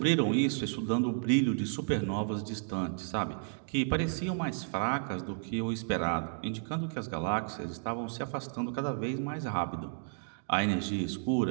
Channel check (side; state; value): left; silent; digital silence